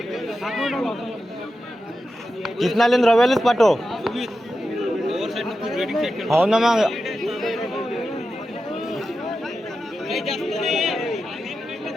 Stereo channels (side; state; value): both; normal; correlation 0.90